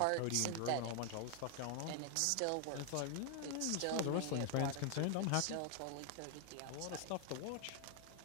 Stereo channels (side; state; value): both; different; correlation 0.00